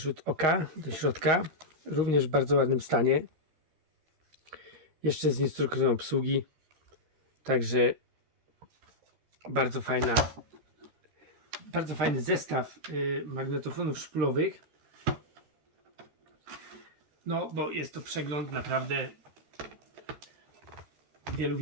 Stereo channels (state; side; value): late; left; 13 ms